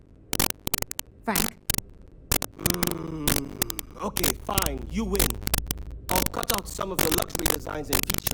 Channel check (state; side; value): identical; both; correlation 1.00